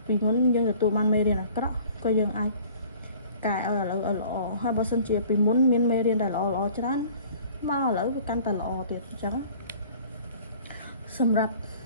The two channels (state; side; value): inverted; both; correlation -0.50